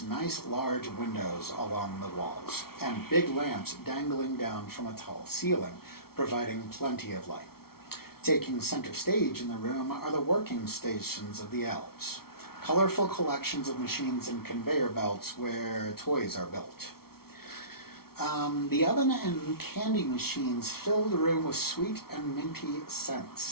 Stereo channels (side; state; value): right; late; 0.94 ms